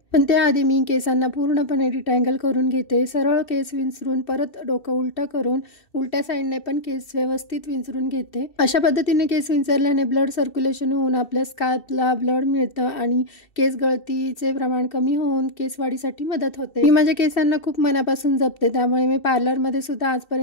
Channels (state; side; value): late; right; 2.7 ms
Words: पण त्याआधी मी केसांना पूर्णपणे डिटँगल करून घेते. सरळ केस विंचरून परत डोकं उलटं करून उलट्या साईडने पण केस व्यवस्थित विंचरून घेते. अशा पद्धतीने केस विंचरल्याने ब्लड सर्क्युलेशन होऊन आपल्या स्कॅल्पला ब्लड मिळतं आणि केस गळतीचे प्रमाण कमी होऊन केस वाढीसाठी मदत होते. मी माझ्या केसांना खूप मनापासून जपते, त्यामुळे मी पार्लरमध्ये सुद्धा